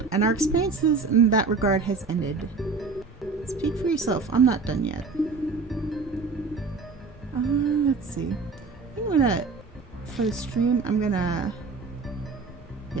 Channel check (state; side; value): quieter; left; 4.4 dB